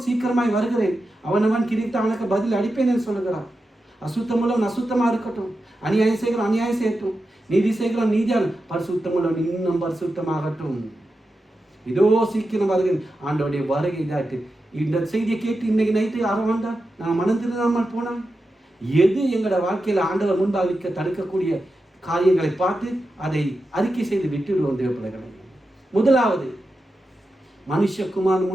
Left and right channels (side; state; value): both; normal; correlation 0.90